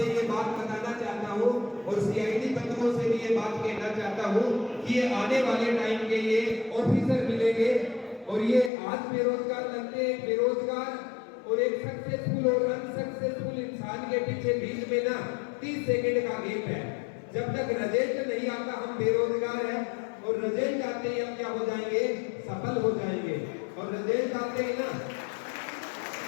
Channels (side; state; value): right; drops out; at 8.7 s